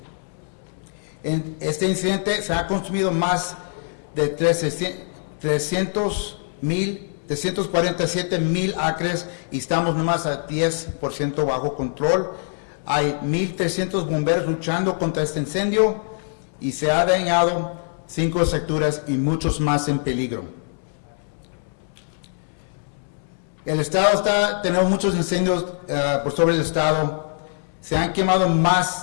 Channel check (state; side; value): silent; right; 63 dB below the other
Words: En este incidente se ha consumido más de 347,000 acres y estamos nomás a 10% bajo control. Hay 1,300 bomberos luchando contra este incendio y se ha dañado 5 estructuras y muchos más en peligro. El estado tenemos muchos incendios por sobre el estado. Se han quemado